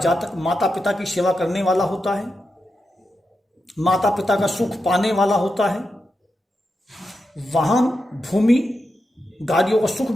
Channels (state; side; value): normal; both; correlation 0.88